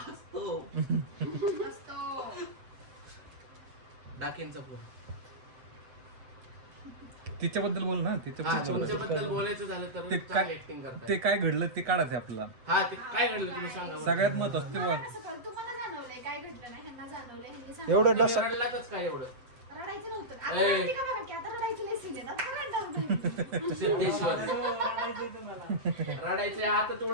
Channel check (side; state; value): left; late; 7.9 ms